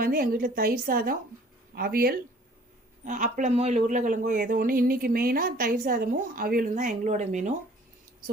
எங்கள் வீட்டில் தயிர் சாதம், அவியல், அப்பளமோ இல்லை உருளைக்கிழங்கோ ஏதோ ஒன்று. இன்றைக்கி மெயினாக தயிர் சாதமும் அவியலும் தான் எங்களோட மெனு. ஸோ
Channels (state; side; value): normal; both; correlation 0.54